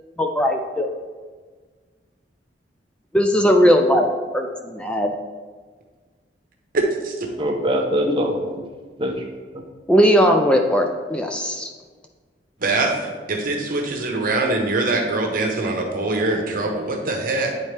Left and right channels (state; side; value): normal; both; correlation 0.54